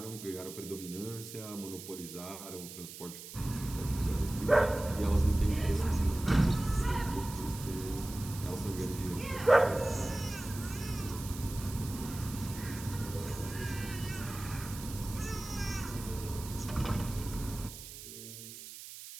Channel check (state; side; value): noise; right; hiss, 12 dB below the sound